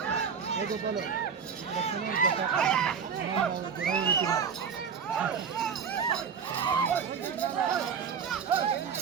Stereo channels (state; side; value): quieter; left; 6.6 dB